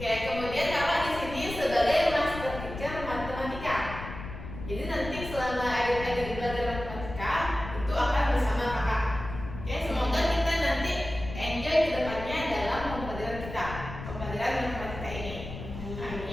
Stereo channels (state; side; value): noise; left; rumble, 10 dB below the sound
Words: kemudian kakak di sini sebagai master teacher matematika. Jadi nanti selama adik-adik belajar matematika itu akan bersama kakak. Oke, semoga kita nanti enjoy ke depannya dalam pembelajaran kita, pembelajaran matematika ini.